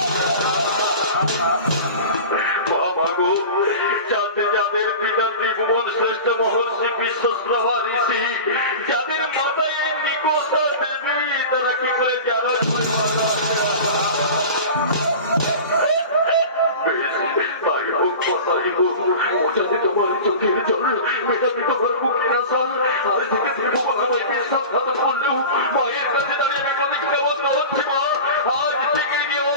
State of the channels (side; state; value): both; inverted; correlation -0.34